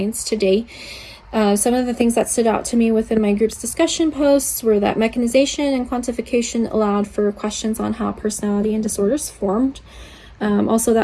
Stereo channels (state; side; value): identical; both; correlation 1.00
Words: today. Some of the things that stood out to me within my group's discussion posts were that mechanization and quantification allowed for questions on how personality and disorders formed. Also,